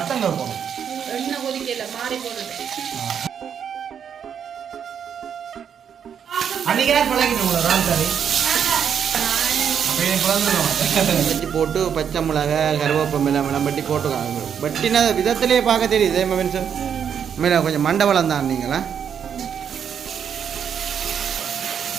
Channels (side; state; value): left; quieter; 8.0 dB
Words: போணும். எண்ணெய் கொதிக்கல மாறி போடுது. அன்னைக்கு பழகிட்டு ரால் கறி வச்சு போட்டு பச்சை மிளகா கருவேப்பமில்லை மிளம்பட்டி போட்டுக்காங்க. பட்டினா விதத்திலே பார்க்க தெரியுது சார். மேலே கொஞ்சம் மண்டபலம் தான் நீங்களா.